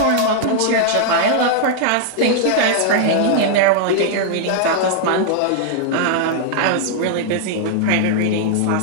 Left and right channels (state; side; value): different; both; correlation -0.01